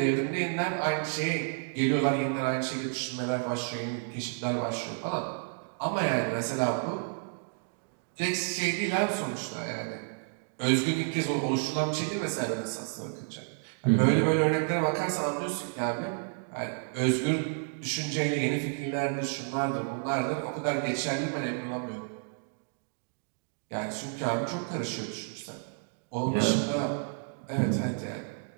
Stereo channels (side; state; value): left; silent; 57 dB below the other